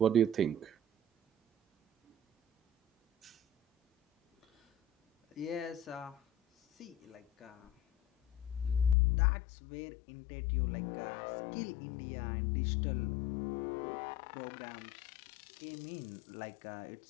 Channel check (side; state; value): right; drops out; at 9.0 s